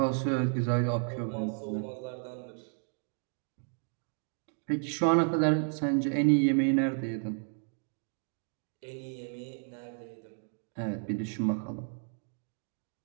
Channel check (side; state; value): left; silent; 56 dB below the other